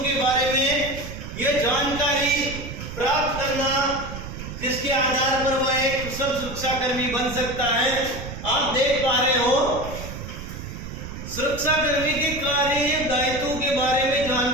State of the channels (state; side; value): noise; right; rumble, 9 dB below the sound